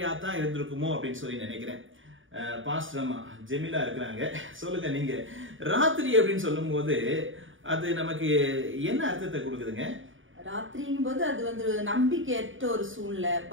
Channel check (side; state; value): left; late; 0.57 ms